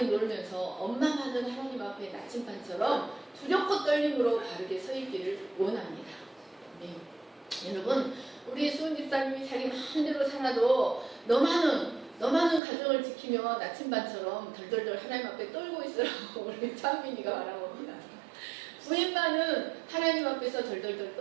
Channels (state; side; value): drops out; left; at 12.6 s